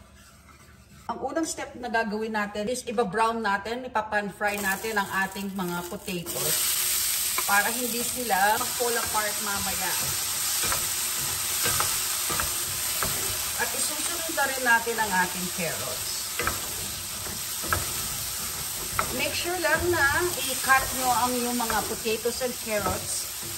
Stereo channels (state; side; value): identical; both; correlation 1.00